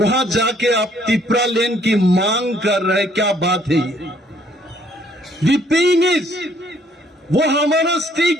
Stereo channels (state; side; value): normal; both; correlation 0.65